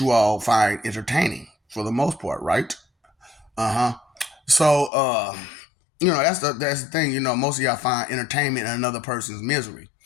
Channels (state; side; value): drops out; right; at 4.9 s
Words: you all find entertaining for the most part, right? Uh huh. So, that's the thing. Most of y'all find entertainment in another person's misery,